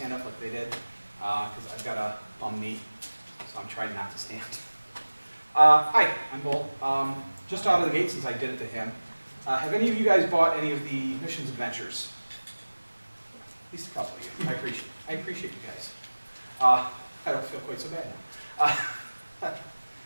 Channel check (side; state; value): both; inverted; correlation -1.00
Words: up like they did because I've got a bum knee, so I'm trying not to stand. Hi, I'm Bull. Just out of the gate since I did it to him. Have any of you guys bought any of the missions adventures? At least a couple of you. I appreciate you guys. I don't feel quite so bad